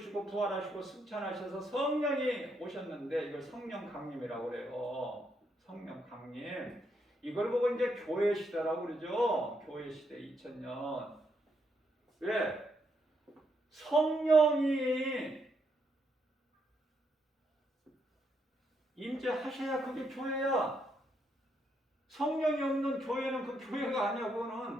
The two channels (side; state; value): both; normal; correlation 0.77